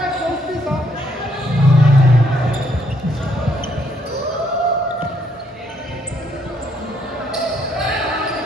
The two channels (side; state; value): both; normal; correlation 0.71